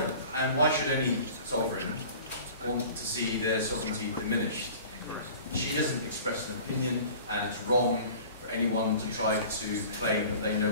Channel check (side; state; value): both; inverted; correlation -0.43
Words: and why should any sovereign want to see their sovereignty diminished? She doesn't express an opinion, and it's wrong for anyone to try to claim that they